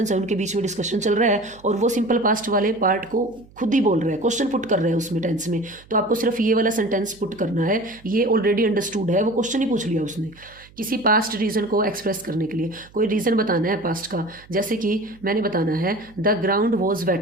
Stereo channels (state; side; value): noise; right; hum, 25 dB below the sound